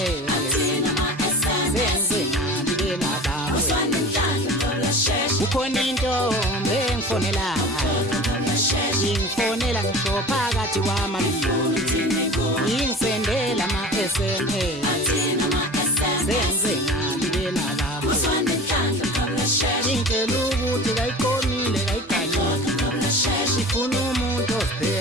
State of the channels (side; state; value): both; normal; correlation 0.38